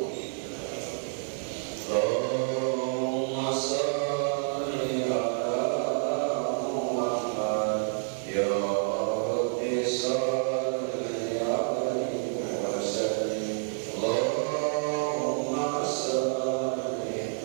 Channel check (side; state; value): left; silent; digital silence